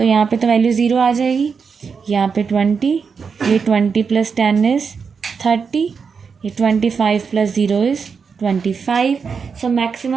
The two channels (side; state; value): left; quieter; 5.8 dB